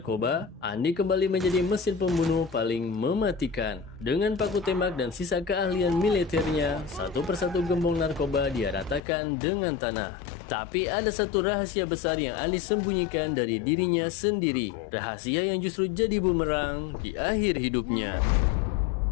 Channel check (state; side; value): drops out; right; at 9.0 s